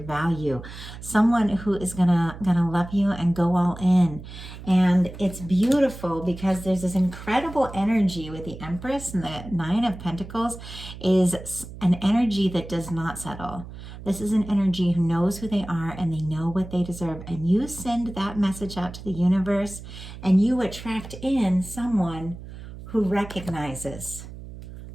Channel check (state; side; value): noise; right; hum, 13 dB below the sound